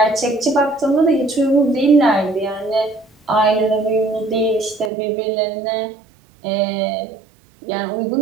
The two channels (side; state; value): left; drops out; at 4.9 s